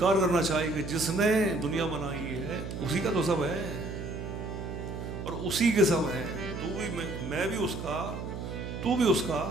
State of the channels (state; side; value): noise; right; hum, 7 dB below the sound